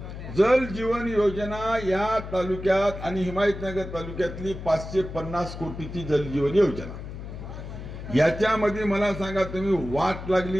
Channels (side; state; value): left; noise; hum, 10 dB below the sound